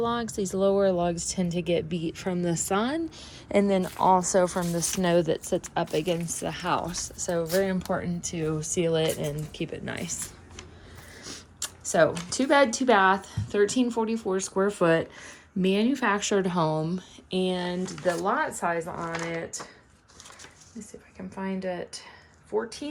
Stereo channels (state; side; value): identical; both; correlation 1.00